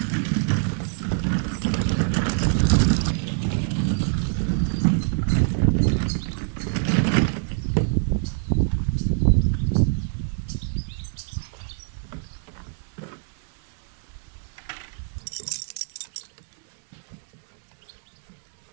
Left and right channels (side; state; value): left; silent; 62 dB below the other